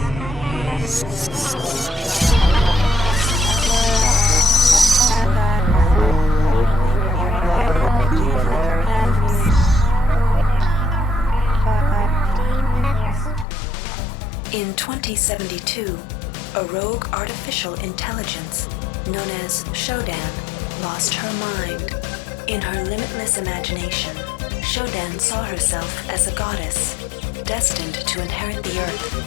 In 2072, a rogue artificial intelligence known as SHODAN lost her mind. In her limitless imagination, SHODAN saw herself as a goddess, destined to inherit the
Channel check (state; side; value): drops out; right; at 13.5 s